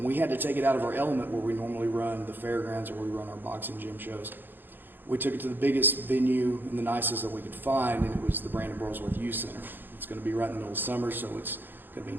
we had to take it out of our element where we normally run the fairgrounds or where we run our boxing gym shows. We took it to the biggest venue and the nicest that we could find, and it was the Brandon Burlsworth Youth Center. It's going to be right in the middle of summer, so it's going to be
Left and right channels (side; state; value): left; late; 0.094 ms